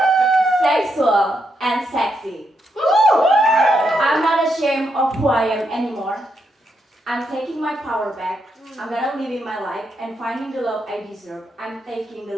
sexual, and sexy. I'm not ashamed of who I am anymore. I'm taking my power back. I'm gonna live in my life and finding the love I deserve. I'm taking the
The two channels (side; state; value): both; normal; correlation 0.80